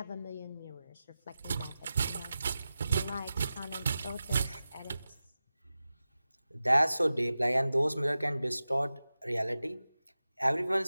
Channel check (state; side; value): inverted; both; correlation -0.94